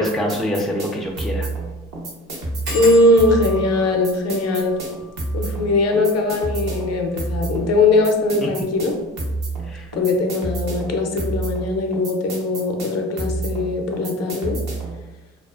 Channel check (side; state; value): both; normal; correlation 0.38